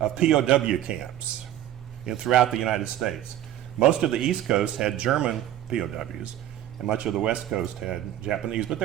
POW camps throughout the United States. Most of the East Coast had German POWs, and much of the West Coast had Japanese, but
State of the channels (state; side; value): quieter; left; 12.2 dB